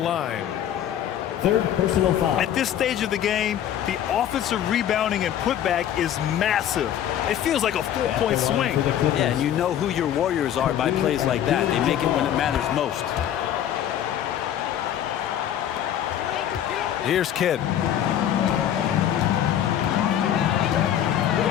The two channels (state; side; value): quieter; right; 10.6 dB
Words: Third personal foul. At this stage of the game, the offensive rebounding and putback is massive. It feels like a 4-point swing. Yeah, and you know who your Warriors are by plays like that. They make it when it matters most. Here's Kidd.